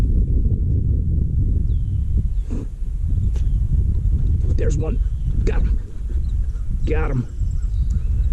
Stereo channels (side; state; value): both; identical; correlation 1.00